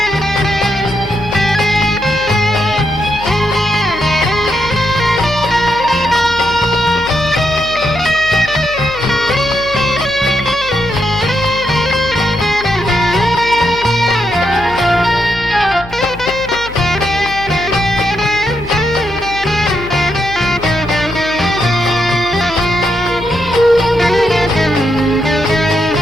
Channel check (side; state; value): left; noise; hum, 16 dB below the sound